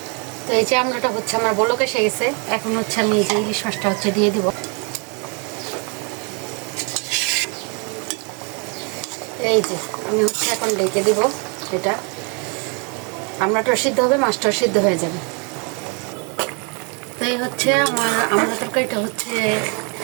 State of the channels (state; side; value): quieter; left; 34.9 dB